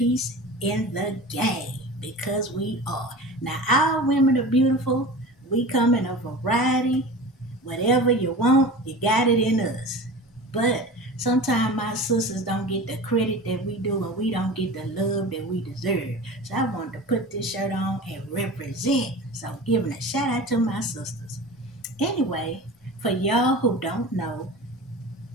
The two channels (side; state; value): both; normal; correlation 0.34